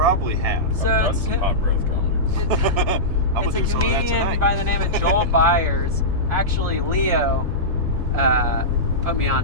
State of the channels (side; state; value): left; late; 1.7 ms